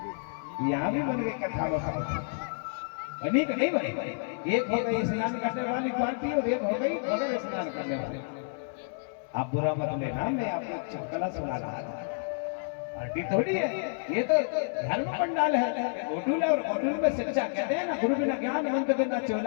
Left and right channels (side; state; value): right; silent; 58 dB below the other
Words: यहाँ भी बन गई कथा बनी कि नहीं बनी? एक हो गई स्नान करने वाली पार्टी और एक हो गई बगैर स्नान करने वाली। आप बुरा मत लेना, मैं आपको चुटकुला सुना रहा था। पार्टी थोड़ी है ये, तो धर्म पंडाल है, होटल है। और होटल में शिक्षा कहते हैं ना, गुरु बिना ज्ञान मंत्र बिना